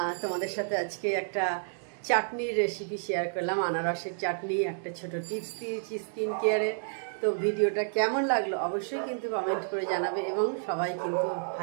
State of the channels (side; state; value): left; silent; digital silence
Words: তোমাদের সাথে আজকে একটা চাটনির রেসিপি শেয়ার করলাম, আনারসের চাটনি, একটা ছোট টিপস দিয়েছি স্কিন কেয়ারে। তো ভিডিওটা কেমন লাগলো অবশ্যই কিন্তু কমেন্ট করে জানাবে, এবং সবাই কিন্তু